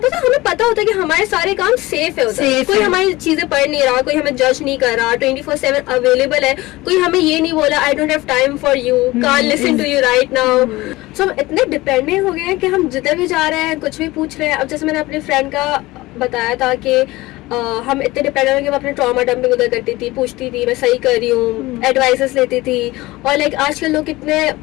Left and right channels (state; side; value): quieter; right; 19.6 dB